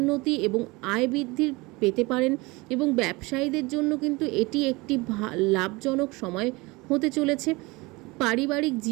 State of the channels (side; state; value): left; quieter; 23.9 dB